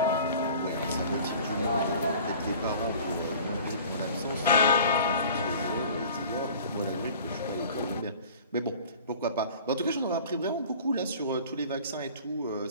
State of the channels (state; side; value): inverted; both; correlation -0.45